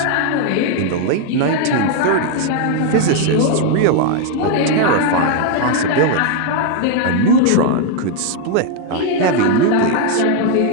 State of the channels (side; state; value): both; different; correlation 0.00